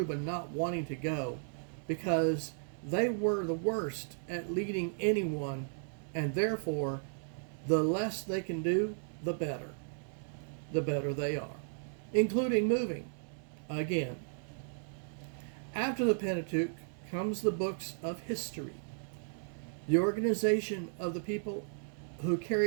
not wanting to go because they were the worst at leading anyone, and therefore the less they can do, the better. The better they are, including moving again. After the Pentateuch comes the books of history, the organization of the people who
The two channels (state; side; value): silent; left; digital silence